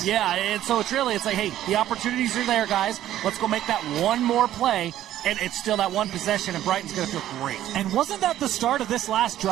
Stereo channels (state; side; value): quieter; left; 12.6 dB